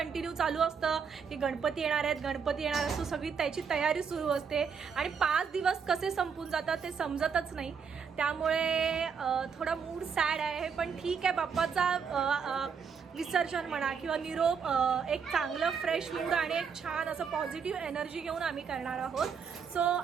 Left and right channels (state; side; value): quieter; left; 6.3 dB